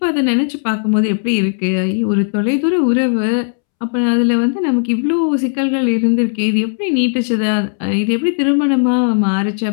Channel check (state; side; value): silent; right; 69 dB below the other